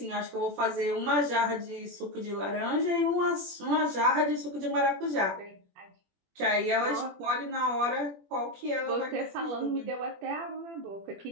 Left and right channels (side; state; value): left; late; 21 ms